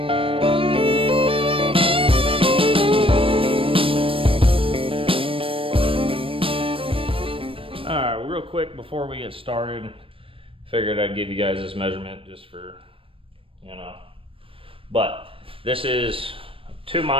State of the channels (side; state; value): left; late; 0.26 ms